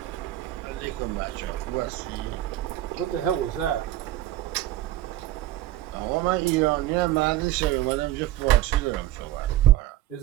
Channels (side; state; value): left; quieter; 14.4 dB